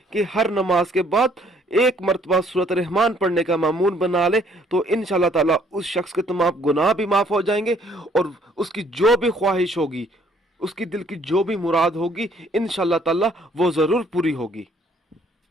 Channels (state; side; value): normal; both; correlation 0.63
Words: कि हर नमाज के बाद एक मरतबा सूरत रहमान पढ़ने का मामूल बना ले, तो इंशाअल्लाह ताला उस शख्स के तमाम गुनाह भी माफ़ हो जाएंगे और उसकी जो भी ख्वाहिश होगी, उसकी दिल की जो भी मुराद होगी, इंशाअल्लाह ताला वो ज़रूर पूरी होगी।